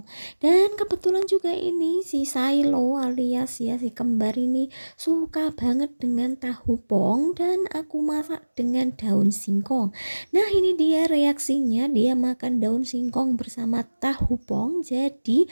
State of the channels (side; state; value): both; inverted; correlation -1.00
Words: Dan kebetulan juga ini si Silo alias ya si kembar ini suka banget dengan tahu pong dan aku masak dengan daun singkong. Nah ini dia reaksinya, dia makan daun singkong bersama tahu pong. Jadi